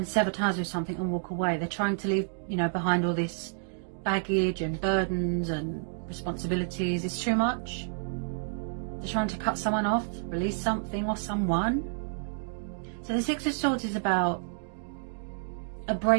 sever ties with something and walk away. They're trying to leave, you know, behind all this baggage and burdens and responsibilities. It's too much. They're trying to cut someone off, release something or someone. So the Six of Swords is about a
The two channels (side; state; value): left; silent; digital silence